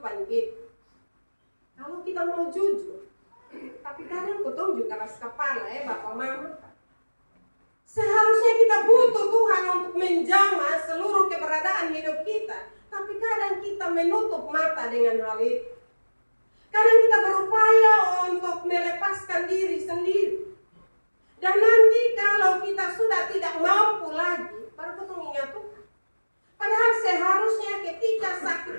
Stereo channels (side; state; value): both; inverted; correlation -1.00